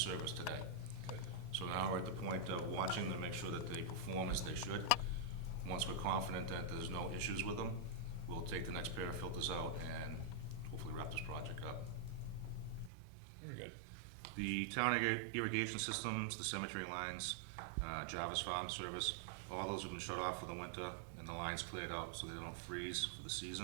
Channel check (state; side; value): drops out; left; at 12.9 s